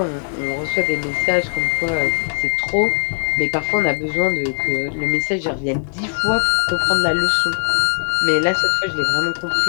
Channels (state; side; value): silent; right; 66 dB below the other